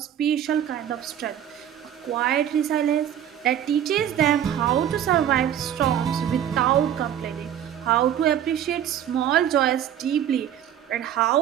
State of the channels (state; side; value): quieter; left; 10.3 dB